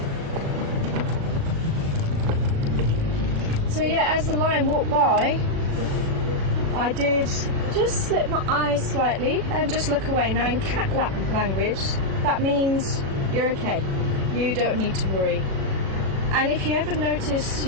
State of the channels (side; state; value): left; late; 36 ms